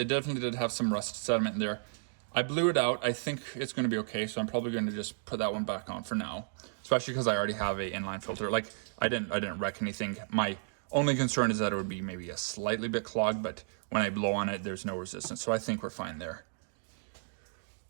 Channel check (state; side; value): silent; left; digital silence